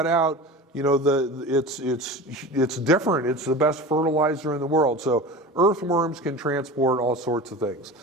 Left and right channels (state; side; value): normal; both; correlation 0.33